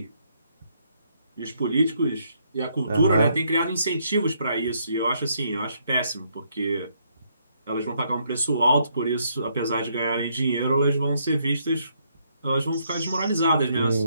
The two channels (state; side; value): inverted; both; correlation -0.73